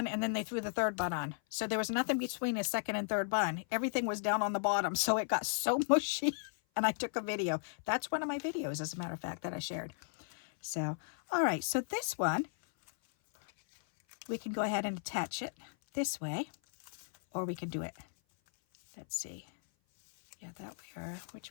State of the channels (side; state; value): right; silent; 54 dB below the other